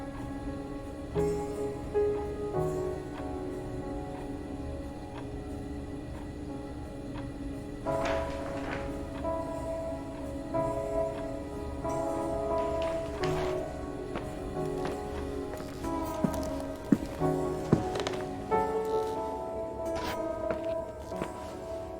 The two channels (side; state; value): both; identical; correlation 1.00